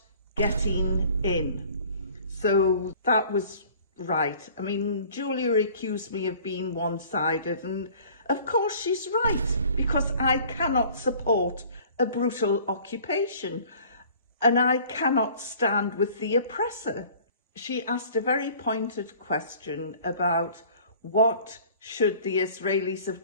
getting in. So that was right. I mean, Julia accused me of being one-sided, and of course she's right, because I cannot support a brutal occupation, and I cannot stand with the oppressor. She asked a very pointed question about what should the Israelis have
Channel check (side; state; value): both; inverted; correlation -0.50